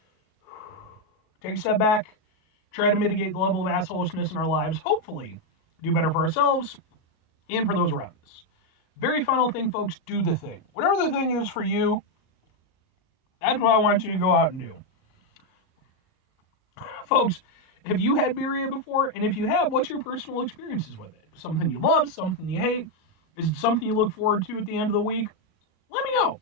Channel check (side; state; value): right; late; 37 ms